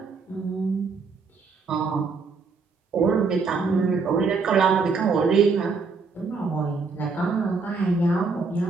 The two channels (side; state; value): left; quieter; 4.6 dB